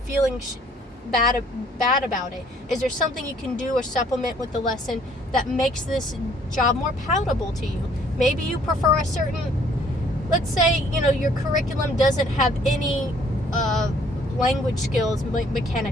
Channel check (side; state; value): both; normal; correlation 0.61